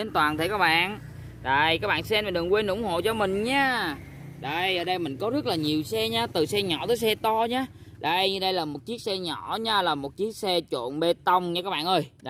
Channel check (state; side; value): identical; both; correlation 1.00